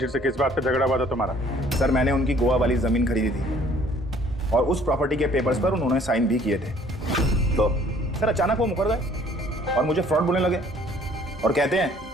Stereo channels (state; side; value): normal; both; correlation 0.57